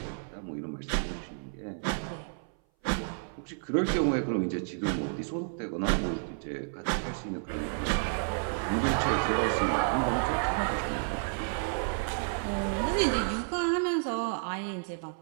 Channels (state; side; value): silent; left; 57 dB below the other